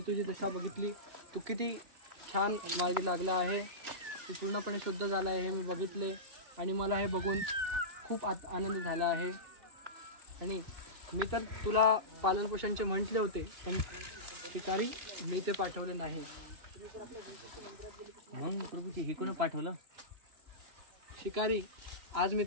दशा बघितली. तू किती छान मार्गी लागला आहे. तू पूर्णपणे शुद्ध झाला आहे हे मी बघितले आणि मला हे बघून खूप आनंद झाला आहे. आणि मी तर तुला पालनपोषणचे म्हटले होते, पण शिकारी मी ते पाठवले नाही. मग प्रभूजी हे कोण पाठवलं? शिकारी, आज मी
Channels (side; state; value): left; late; 2.8 ms